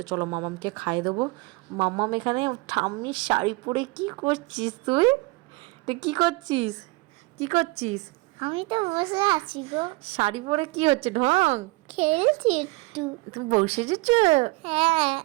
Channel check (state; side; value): quieter; left; 24.5 dB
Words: চলো মামামকে খাইয়ে দেবো। মামাম এখানে ঠাম্মির শাড়ি পরে কি করছিস তুই? তুই কি করছিস? কি করছিস? আমি তো বসে আছি গো। শাড়ি পরে কি হচ্ছে ঢং? খেলছি একটু। তুমি বউ সেজেছো? হ্যাঁ।